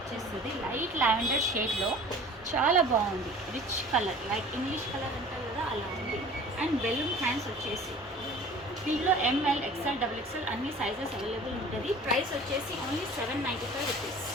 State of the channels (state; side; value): normal; both; correlation 0.44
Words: లైట్ లావెండర్ షేడ్లో చాలా బాగుంది. Rich colour like English colour అంటారు కదా అలా ఉంది. అండ్ బెలూన్ హ్యాండ్స్ వచ్చేసి దీంట్లో ఎంఎల్ ఎక్స్ఎల్ డబుల్ ఎక్స్ఎల్ అన్ని సైజెస్ అవైలబుల్ ఉంటుంది. ప్రైస్ వచ్చేసి ఓన్లీ 795 రూపీస్.